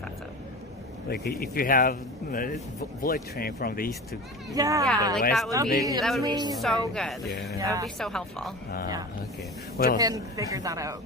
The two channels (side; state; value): both; normal; correlation 0.32